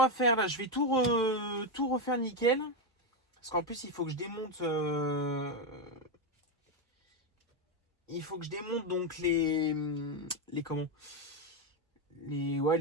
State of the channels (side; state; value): both; normal; correlation 0.07